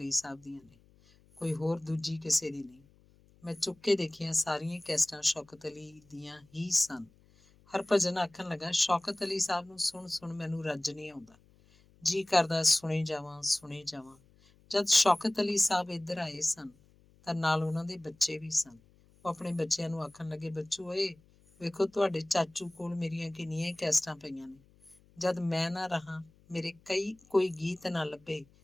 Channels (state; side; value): noise; left; hum, 29 dB below the sound